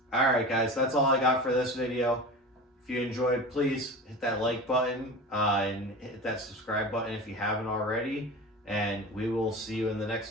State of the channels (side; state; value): both; normal; correlation 0.31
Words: alright guys, that's all I got for this video. If you enjoyed, please hit that like button and hit that subscribe button if you haven't already. And we will see you in the